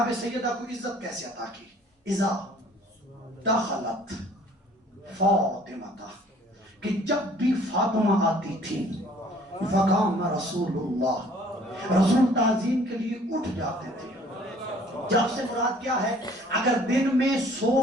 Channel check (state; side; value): normal; both; correlation 0.55